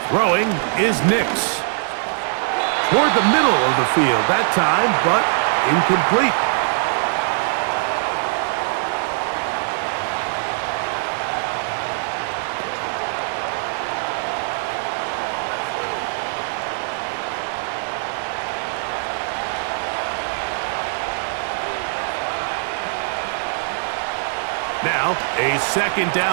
Throwing is Nix. Toward the middle of the field that time, but incomplete. Now, a 2nd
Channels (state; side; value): silent; left; digital silence